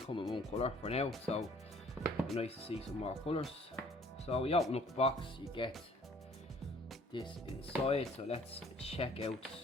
in one colour for now, so it'd be nice to see some more colours. So we open up the box, you get this inside, so let's check out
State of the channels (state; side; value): normal; both; correlation 0.56